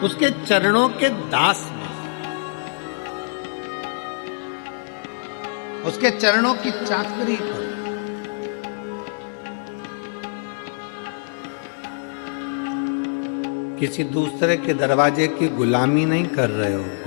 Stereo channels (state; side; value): silent; right; digital silence